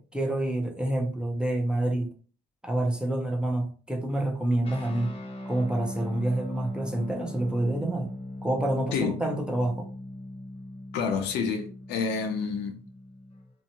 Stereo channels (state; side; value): normal; both; correlation 0.80